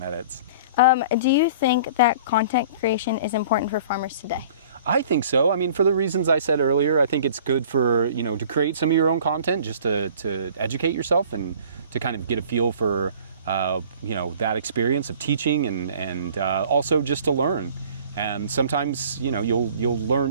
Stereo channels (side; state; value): both; inverted; correlation -0.48